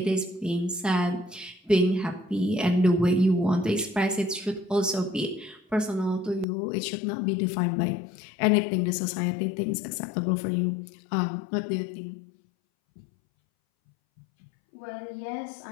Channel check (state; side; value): drops out; right; at 6.5 s